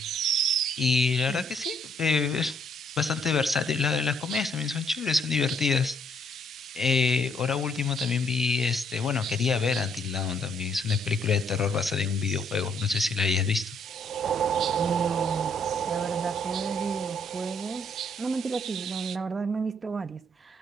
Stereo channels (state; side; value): normal; both; correlation 0.69